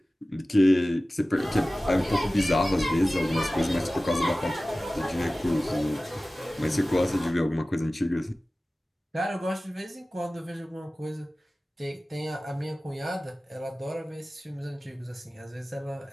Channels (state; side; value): normal; both; correlation 0.97